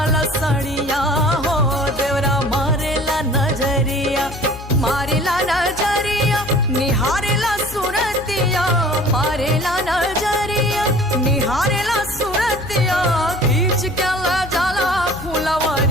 सड़िया हो देवरा मारेला नजरिया। मारेला नजरिया निहारेला सुरतिया, मारेला नजरिया निहारेला सुरतिया। खींच के ला जाला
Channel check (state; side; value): noise; left; hum, 14 dB below the sound